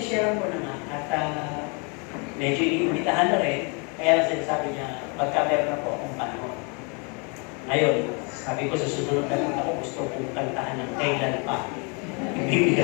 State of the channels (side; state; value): right; quieter; 34.1 dB